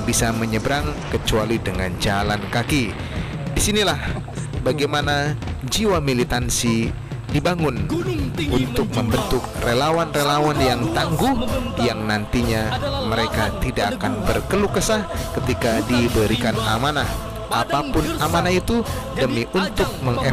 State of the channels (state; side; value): identical; both; correlation 1.00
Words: bisa menyeberang kecuali dengan jalan kaki. Disinilah bagaimana jiwa militansi dibangun untuk membentuk relawan-relawan yang tangguh, yang nantinya mereka tidak akan berkeluh kesah ketika diberikan amanah. Apapun amanah itu, demi untuk